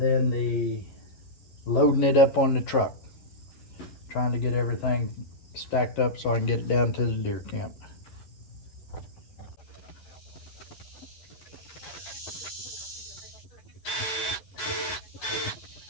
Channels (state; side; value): late; right; 11 ms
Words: the loading it up on the truck. Trying to get everything stacked up so I can get it down to the deer camp.